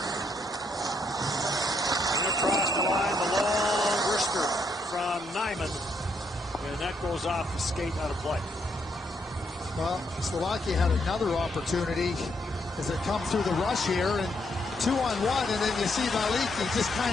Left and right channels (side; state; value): both; normal; correlation 0.75